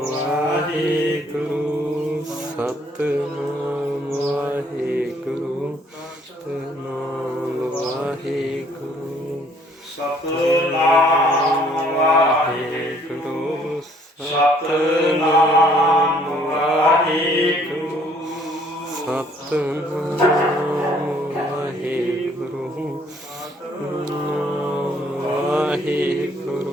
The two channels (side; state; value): both; normal; correlation 0.62